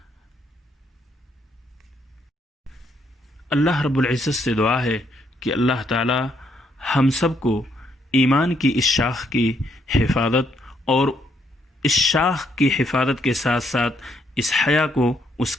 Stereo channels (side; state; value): both; normal; correlation 0.73